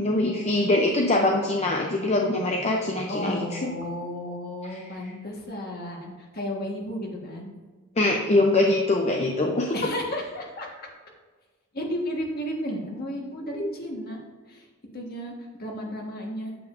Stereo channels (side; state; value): both; normal; correlation 0.40